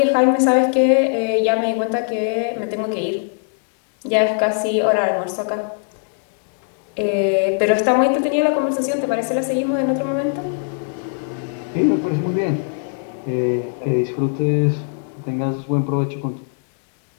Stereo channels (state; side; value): silent; right; 66 dB below the other